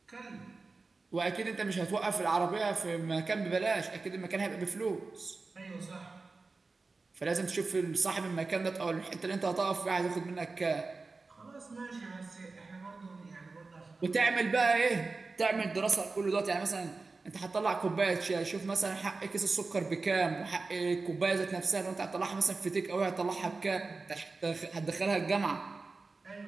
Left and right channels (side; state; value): left; quieter; 3.9 dB